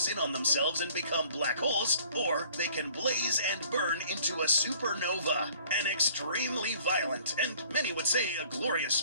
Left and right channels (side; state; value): both; inverted; correlation -0.55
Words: in on themselves and become black holes, or they can blaze and burn into a supernova. An extremely violent, and many would say a glorious